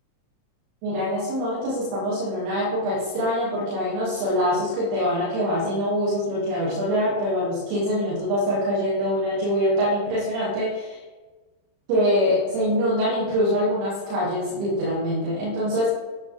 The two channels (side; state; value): left; late; 35 ms